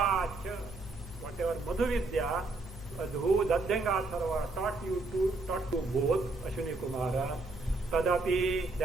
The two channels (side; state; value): left; quieter; 3.3 dB